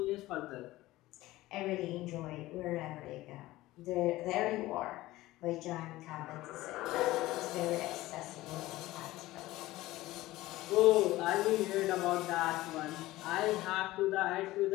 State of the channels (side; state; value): right; quieter; 17.5 dB